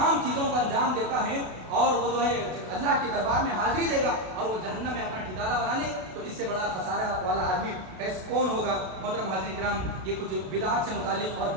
چیزوں کو انجام دیتا ہے اور وہ جو ہے اللہ کے دربار میں حاضری دے گا اور وہ جہنم میں اپنا ٹھکانہ بنا لے، تو اس سے بڑا خسارہ والا آدمی کون ہوگا؟ محترم حاضرین کرام، یہ کچھ بدعات سے متعلق اور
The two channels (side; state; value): left; late; 32 ms